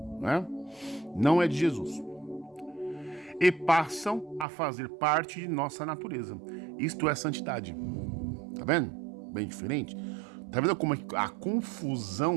né? Não é de Jesus. E passam a fazer parte de nossa natureza. Isto é santidade. Tá vendo? Bem diferente. Tá vendo como a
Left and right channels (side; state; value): left; drops out; at 4.5 s